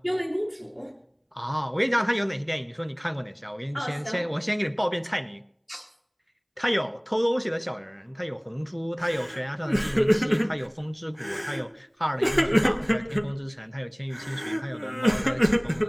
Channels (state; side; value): identical; both; correlation 1.00